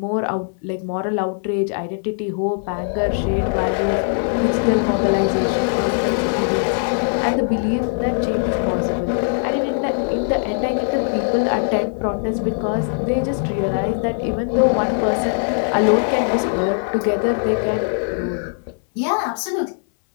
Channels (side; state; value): right; silent; 62 dB below the other